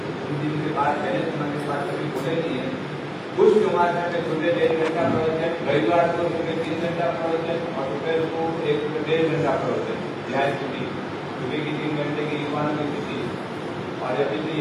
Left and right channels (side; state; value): both; identical; correlation 1.00